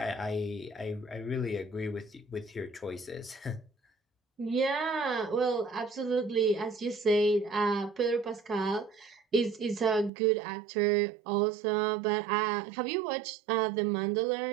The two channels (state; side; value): drops out; left; at 10.1 s